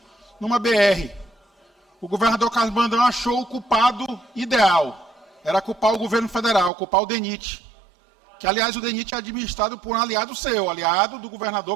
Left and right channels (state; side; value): drops out; left; at 6.7 s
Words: numa BR. O governador Carlos Brandão achou o culpado ideal. Era culpar o governo federal, culpar o DENIT. Que, aliás, o DENIT é administrado por um aliado seu, aliado do